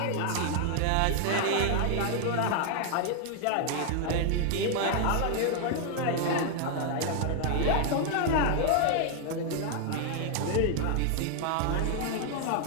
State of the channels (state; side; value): different; both; correlation 0.00